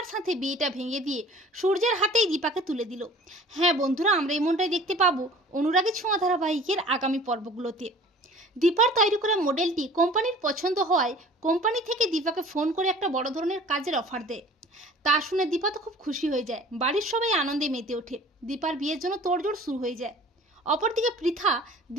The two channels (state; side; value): normal; both; correlation 0.47